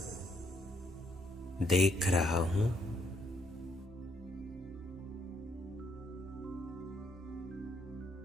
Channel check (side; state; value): both; normal; correlation 0.72